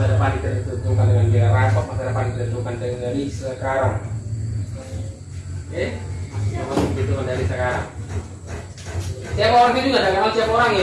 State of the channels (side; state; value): both; identical; correlation 1.00